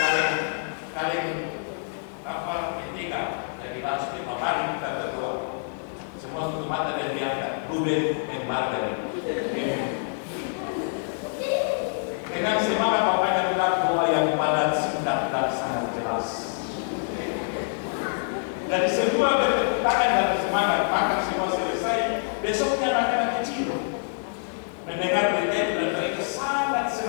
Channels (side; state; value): right; silent; digital silence